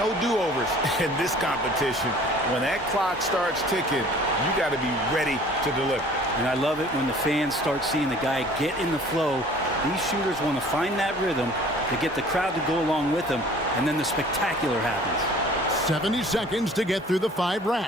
do-overs in this competition. When that clock starts ticking, you got to be ready to deliver. And I love it when the fans start seeing the guy get in the flow. These shooters want to find that rhythm to get the crowd to go along with them, and then the spectacular happens. 70 seconds to get through the 5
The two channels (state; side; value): normal; both; correlation 0.50